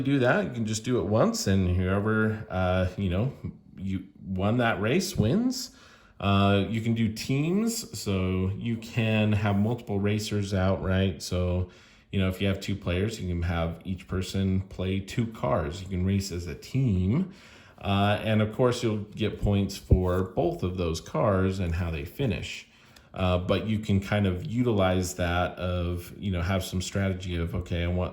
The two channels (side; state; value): both; identical; correlation 1.00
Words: do that. You can just do it once, and whoever, you won that race wins. You can do teams, so you can have multiple racers out, right? So, if you have two players, you can have each person play two cars. You can race as a team. And of course, you'll get points for both of those cars and how they finish. But you can kind of utilize that of, have some strategy of, okay, I